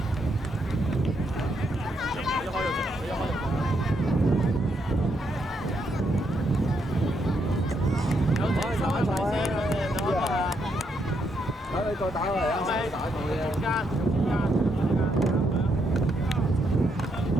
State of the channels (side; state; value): both; normal; correlation 0.77